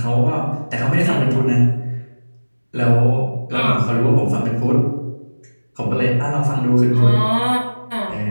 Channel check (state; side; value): inverted; both; correlation -1.00